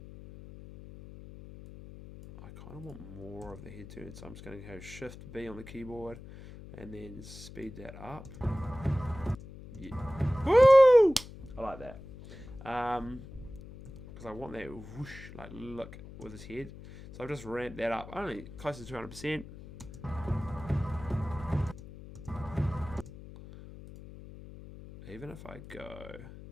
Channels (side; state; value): left; noise; hum, 15 dB below the sound